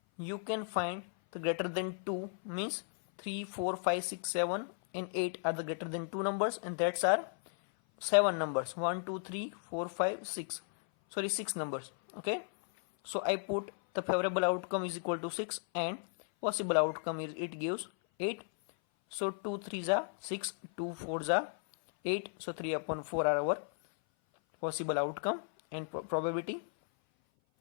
you can find the greater than 2 means 3, 4, 5, 6, 7 and 8 are the greater than 2 numbers, and that's are 7 numbers, 1 2 3 4 5 6, sorry 6 numbers. Okay, so I put the favorable outcome is equal to 6 and possible outcome is it gives 8. So 2 3s are 6, 2 4s are 8, so 3 upon 4 are our possible outcome. And probability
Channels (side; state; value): right; silent; 54 dB below the other